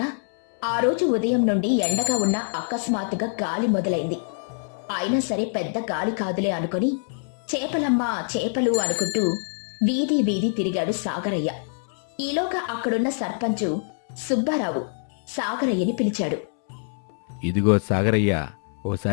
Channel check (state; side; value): silent; right; 62 dB below the other